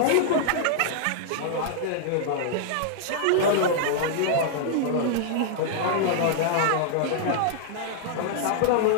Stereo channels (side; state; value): both; different; correlation -0.01